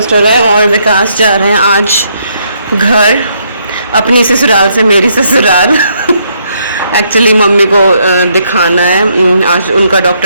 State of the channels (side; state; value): both; inverted; correlation -0.73